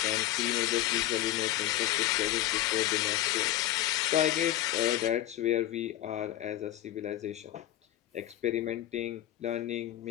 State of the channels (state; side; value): quieter; right; 13.6 dB